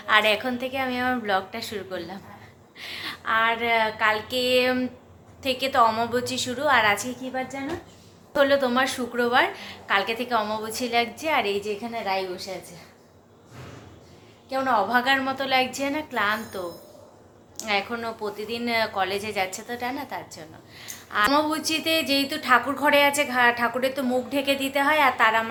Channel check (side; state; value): both; identical; correlation 1.00